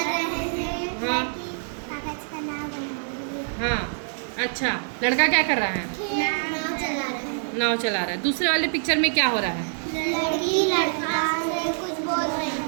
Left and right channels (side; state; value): left; silent; digital silence